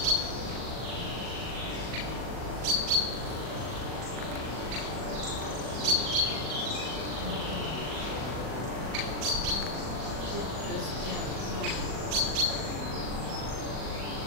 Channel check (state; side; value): late; left; 40 ms